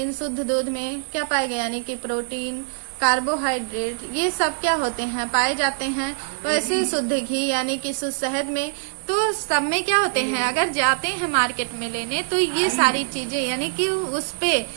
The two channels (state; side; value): silent; left; digital silence